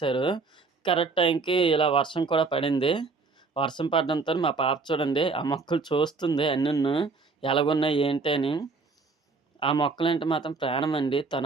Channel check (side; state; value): left; quieter; 4.2 dB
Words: కరెక్ట్ టైంకి ఇలా వర్షం కూడా పడింది. వర్షం పడడంతోని మా పాప చూడండి ఆ మొక్కలు చూస్తుంది అన్నీను. ఎలాగున్నాయి ఏంటి అని. ఆ మొక్కలంటే మాత్రం ప్రాణమండి.